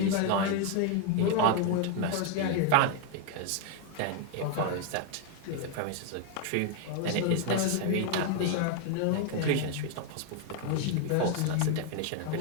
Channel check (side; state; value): both; different; correlation 0.01